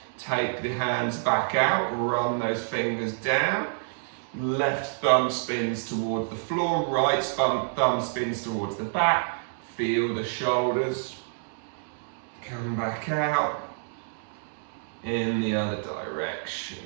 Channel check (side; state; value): left; silent; digital silence